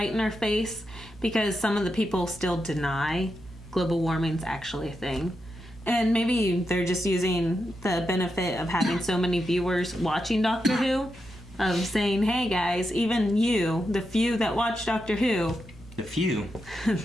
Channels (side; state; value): both; normal; correlation 0.86